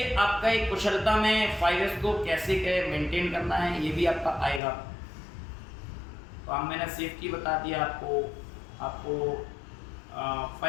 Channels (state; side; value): drops out; right; at 4.6 s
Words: आपका एक कुशलता में 5S को कैसे मेंटेन करना है ये भी आपका आएगा। तो अब मैंने सेफ्टी बता दिया आपको